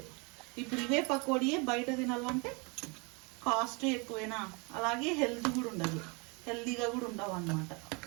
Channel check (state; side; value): quieter; left; 30.7 dB